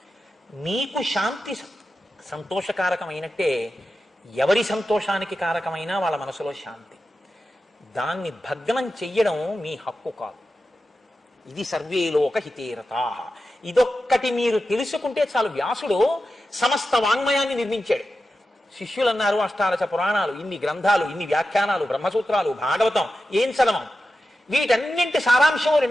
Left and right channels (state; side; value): normal; both; correlation 0.92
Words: మీకు శాంతి సంతోషకారకమైనట్టే ఎవరి సంతోషానికి కారకమైనా వాళ్ళ మనసులో శాంతి. దాన్ని భగ్నం చెయ్యడం మీ హక్కు కాదు. ఇది సర్వేలోక హితేరతాః. ఇదొక్కటి మీరు తెలుసుకుంటే చాలు. వ్యాసుడు సమస్త వాంగ్మయాన్ని నిర్మించాడు. శిష్యులు అన్నారు, అష్టాదశ పురాణాలు, ఇన్ని గ్రంథాలు, ఇన్ని వ్యాఖ్యానాలు, బ్రహ్మసూత్రాలు, భాగవతం, ఏం చదవం, వీటన్నింటి సారాంశం